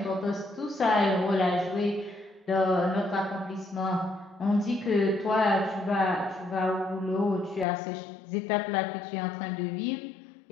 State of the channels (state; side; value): drops out; right; at 7.7 s